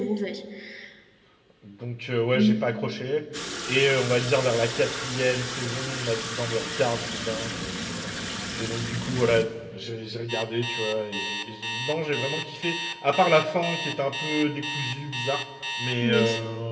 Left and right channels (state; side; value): identical; both; correlation 1.00